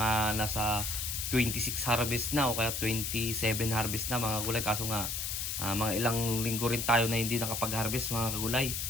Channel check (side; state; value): left; noise; hiss, 2 dB below the sound